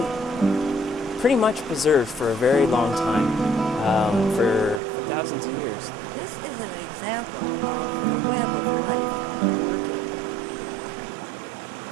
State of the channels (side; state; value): left; drops out; at 4.8 s